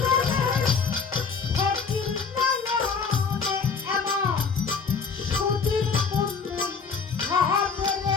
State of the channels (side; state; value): right; quieter; 5.4 dB